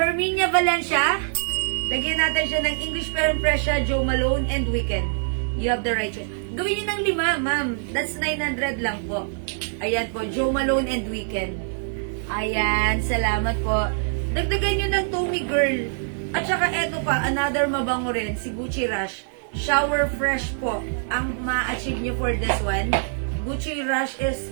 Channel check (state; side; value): silent; left; digital silence